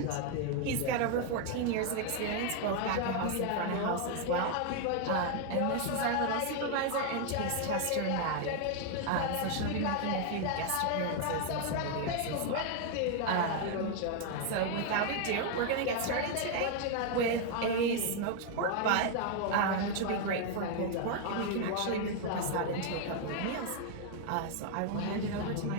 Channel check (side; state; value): both; different; correlation 0.00